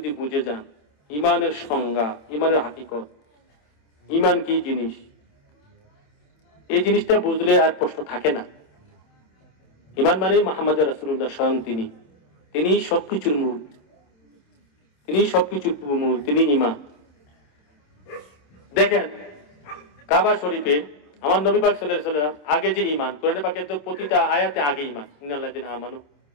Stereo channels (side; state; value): right; late; 27 ms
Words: বুঝে যান ঈমানের সংজ্ঞা ঈমানের হাকিকত ঈমান কি জিনিস এই জিনিসটা বুঝলে আর প্রশ্ন থাকে না ঈমান মানে মুহাম্মদ রাসূলুল্লাহ স্বয়ং তিনি সবকিছুর মূল তিনি সবকিছুর মূল তিনি ঈমান দেখেন কাবা শরীফে আমার নবী পাক সাল্লাল্লাহু আলাইহি ওয়াসাল্লাম আগে যে ঈমান কোরআনে পাকের তো প্রতিটা আয়াতে আগে ঈমান ইন্নাল্লাযিনা আমানু